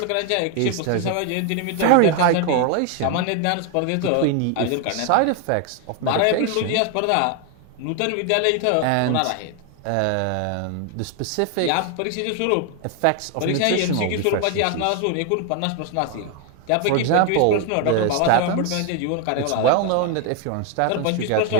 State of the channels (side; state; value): both; different; correlation 0.01